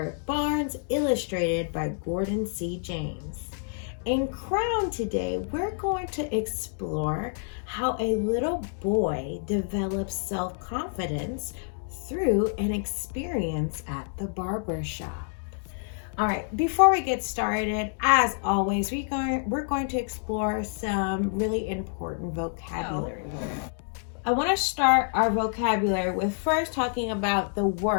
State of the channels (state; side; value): silent; right; 60 dB below the other